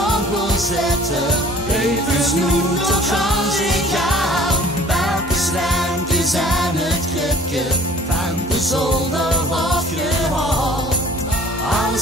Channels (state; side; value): normal; both; correlation 0.50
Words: kon zetten, even snoet tot gaan zich aan. Welke slijmpjes zijn het kripje van de zolder afgehaald.